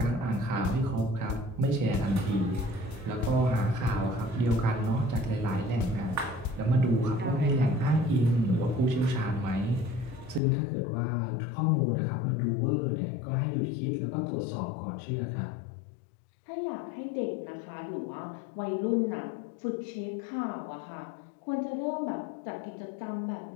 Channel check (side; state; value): right; drops out; at 10.4 s